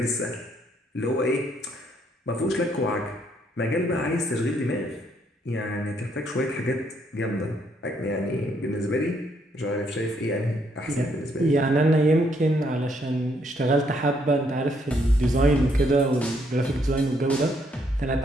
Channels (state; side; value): normal; both; correlation 0.71